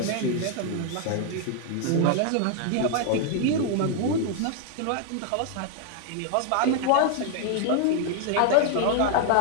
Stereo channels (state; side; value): different; both; correlation 0.00